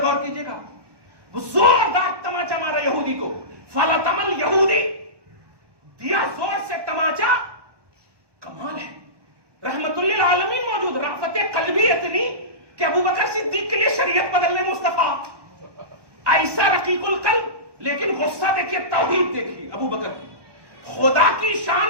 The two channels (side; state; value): left; late; 1.2 ms